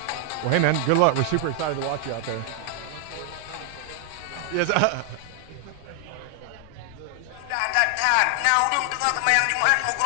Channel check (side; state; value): both; different; correlation 0.00